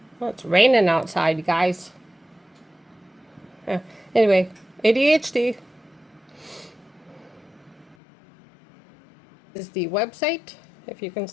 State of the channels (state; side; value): drops out; right; at 8.0 s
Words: Well, it's raining outside, guys. Anyway, ADHD is the website, if you can